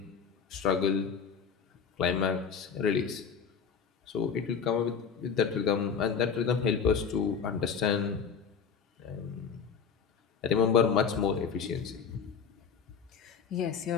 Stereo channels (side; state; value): right; quieter; 6.4 dB